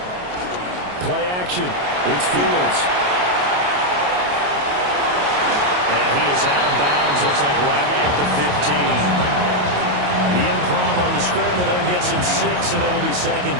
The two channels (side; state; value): left; late; 28 ms